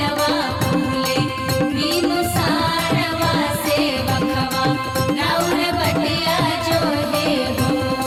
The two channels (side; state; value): both; identical; correlation 1.00